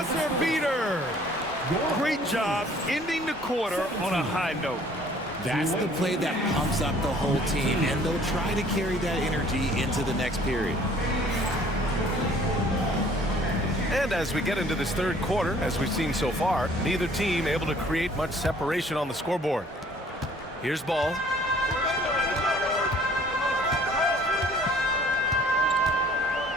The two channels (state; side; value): normal; both; correlation 0.55